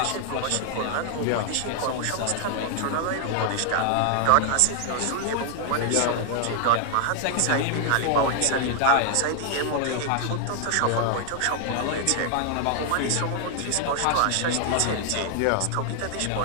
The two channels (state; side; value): different; both; correlation 0.00